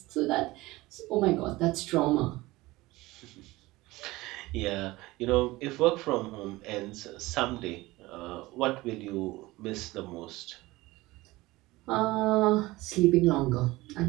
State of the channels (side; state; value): left; quieter; 19.8 dB